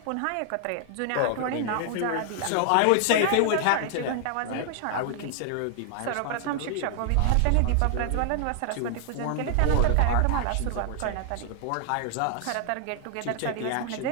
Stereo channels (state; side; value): different; both; correlation 0.00